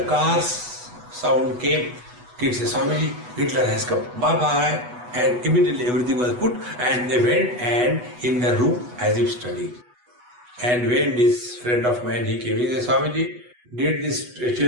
car's sound came, kids said, Swamiji, Hitler has come, bye-bye. And immediately everything was put and they went and in the room as if studying. And when this friend of mine, he came, he said, Swamiji, did these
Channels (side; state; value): left; late; 8.1 ms